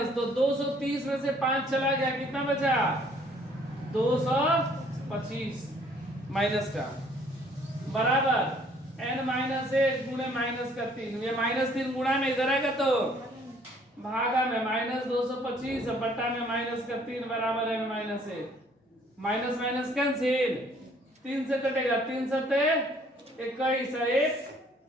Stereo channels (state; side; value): normal; both; correlation 0.60